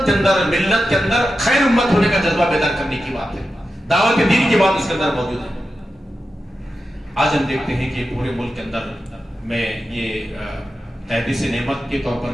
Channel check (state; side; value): normal; both; correlation 0.90